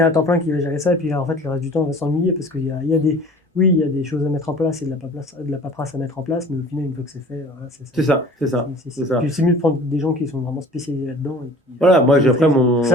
à temps plein qui va gérer ça, et puis là, en fait, le reste du temps, on va s'ennuyer parce qu'il y a des... Oui, il y a des choses à mettre en place et de la paperasse à mettre en place, mais au final, une fois que c'est fait, voilà, c'est ça. Puis c'est mieux de prendre des gens qui sont vraiment spécialisés là-dedans. Voilà, moi, après,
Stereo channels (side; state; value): both; normal; correlation 0.46